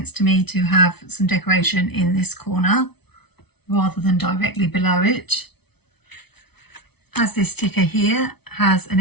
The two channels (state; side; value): late; right; 0.98 ms